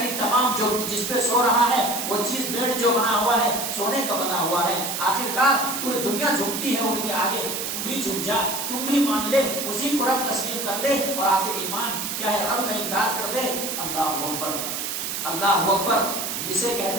تمام جو جس پہ سو رہا ہے وہ چیز بیڈ جو بنا ہوا ہے سونے کا بنا ہوا ہے، آخرکار پوری دنیا جھکتی ہے ان کے آگے، تم بھی جھک جا، تم بھی مان لے، اسی کو رب تسلیم کر لے، اور آخر ایمان کیا ہے؟ رب کا انکار کر دے۔ اللہ اکبر، اللہ اکبر۔ اسے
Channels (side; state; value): right; noise; hiss, 3 dB below the sound